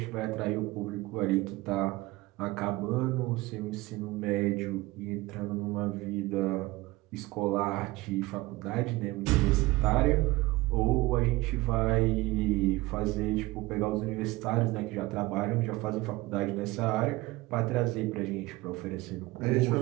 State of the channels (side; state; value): left; quieter; 20.3 dB